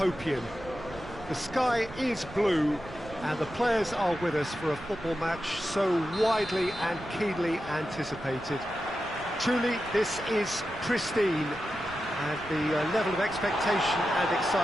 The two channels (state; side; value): noise; right; rumble, 17 dB below the sound